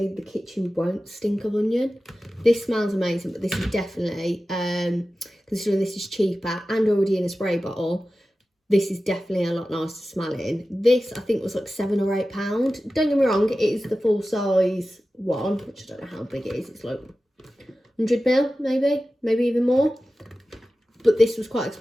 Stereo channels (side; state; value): both; normal; correlation 0.95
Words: the kitchen won't stink of onion. This smells amazing, but this is definitely, considering this is cheaper and already in a spray bottle, this is definitely a lot nicer smelling. This, I think, was like £7 or £8. Don't get me wrong, it is the full size one, which I don't know how big it is. It's like 100 ml, maybe even more. but this was quite